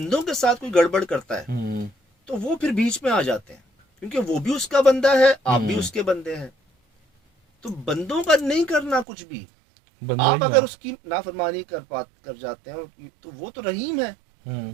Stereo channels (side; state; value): left; drops out; at 9.1 s